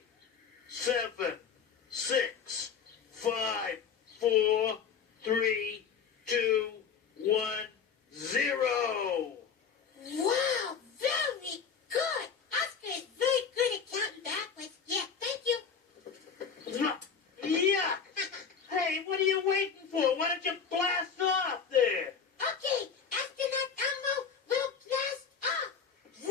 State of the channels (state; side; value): quieter; right; 6.4 dB